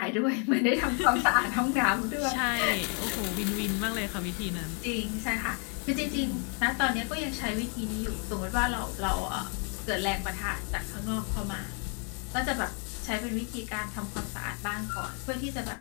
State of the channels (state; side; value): quieter; right; 39.2 dB